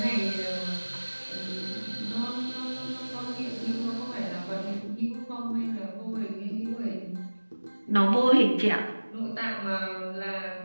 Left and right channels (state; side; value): inverted; both; correlation -1.00